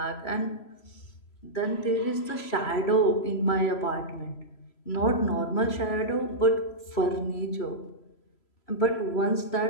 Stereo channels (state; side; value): late; right; 3.0 ms